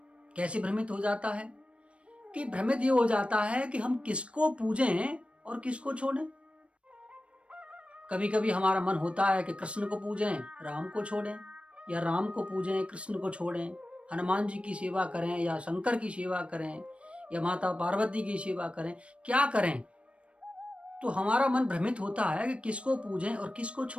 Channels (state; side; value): late; left; 0.060 ms